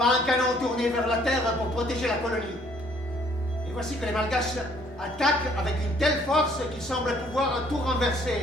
un canon tourné vers la terre pour protéger la colonie. Et voici que les Malgaches attaquent avec une telle force qu'ils semblent pouvoir tout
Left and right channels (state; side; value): normal; both; correlation 0.62